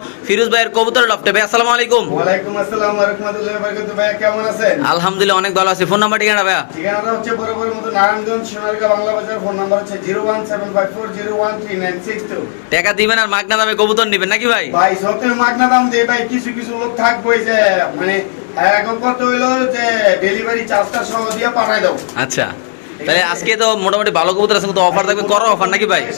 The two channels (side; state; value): right; silent; digital silence